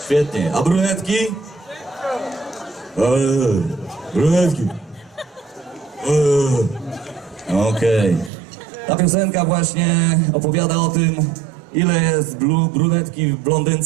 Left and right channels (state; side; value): drops out; left; at 8.3 s